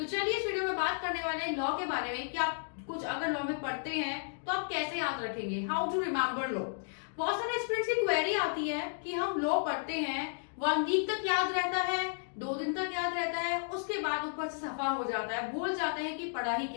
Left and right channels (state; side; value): silent; right; digital silence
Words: चलिए इस वीडियो में बात करने वाले हैं लॉ के बारे में कि आप कुछ अगर लॉ में पढ़ते हैं तो आप कैसे याद रखेंगे, हाउ टू रिमेम्बर लॉ। बहुत सारे स्टूडेंट्स की क्वेरी आती है कि हम लॉ पढ़ते हैं, 1 वीक तक याद रहता है, 2 दिन तक याद रहता है, उसके बाद ऊपर से सफा हो जाता है, भूल जाते हैं कि पढ़ा ही